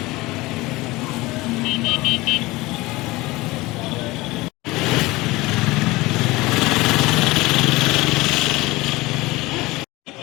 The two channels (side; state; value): right; quieter; 20.9 dB